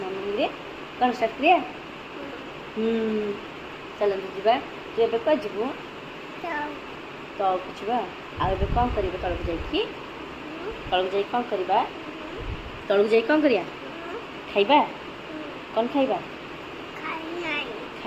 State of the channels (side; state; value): both; identical; correlation 1.00